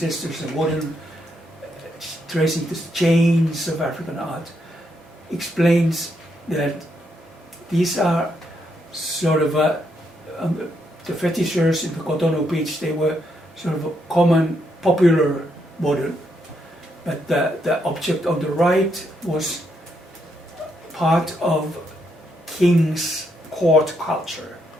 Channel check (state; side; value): normal; both; correlation 0.77